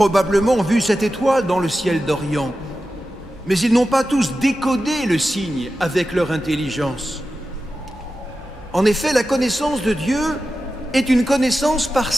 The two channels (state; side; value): normal; both; correlation 0.93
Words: vu cette étoile dans le ciel d'Orient, mais ils n'ont pas tous décodé le signe avec leur intelligence. En effet, la connaissance de Dieu est une connaissance par